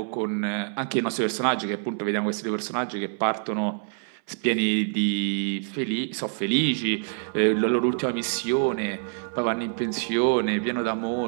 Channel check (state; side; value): silent; left; 60 dB below the other